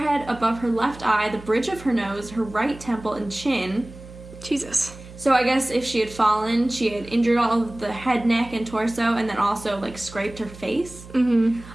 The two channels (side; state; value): right; noise; hum, 17 dB below the sound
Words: above her left eye, the bridge of her nose, her right temple, and chin. Jesus. So I guess if she had fallen, she had injured all of the head, neck, and torso, and then also, like, scraped her face.